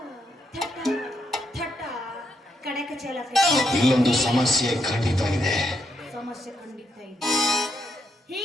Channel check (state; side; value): normal; both; correlation 0.79